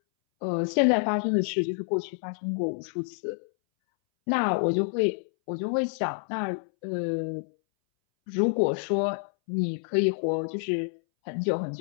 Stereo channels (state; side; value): silent; right; 59 dB below the other